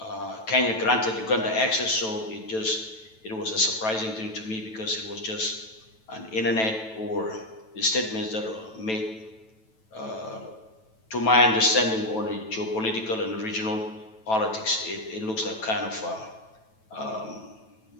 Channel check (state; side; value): late; right; 9.2 ms